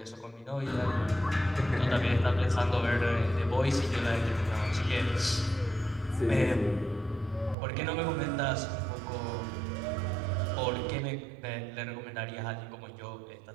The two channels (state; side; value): drops out; left; at 7.6 s